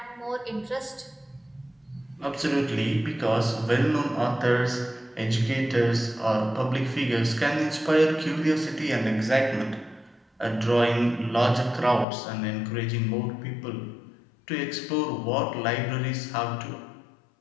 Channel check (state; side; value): drops out; right; at 12.1 s